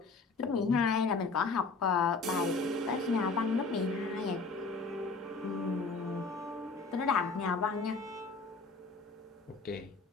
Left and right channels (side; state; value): right; quieter; 4.1 dB